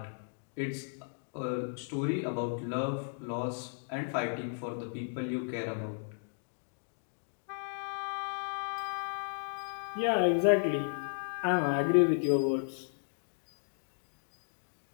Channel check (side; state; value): right; silent; digital silence